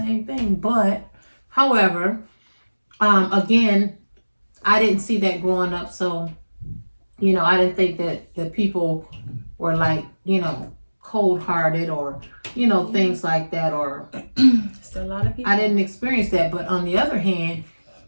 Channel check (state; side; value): inverted; both; correlation -1.00